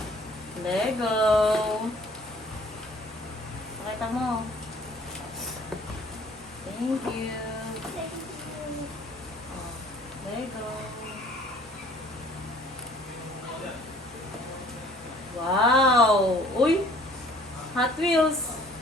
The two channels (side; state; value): both; normal; correlation 0.55